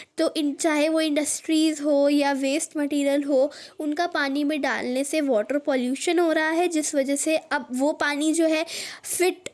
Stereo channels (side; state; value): both; identical; correlation 1.00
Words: तो चाहे वो इंडस्ट्रीज़ हो या वेस्ट मटेरियल हो, उनका पानी में डालने से वाटर पॉल्यूशन हो रहा है, जिस वजह से अब वो पानी जो है फिट